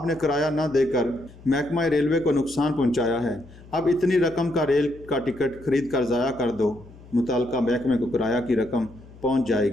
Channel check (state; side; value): noise; left; hum, 21 dB below the sound